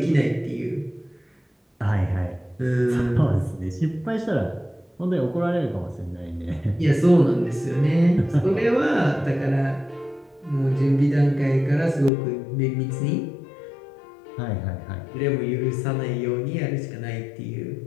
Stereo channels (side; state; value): right; drops out; at 12.1 s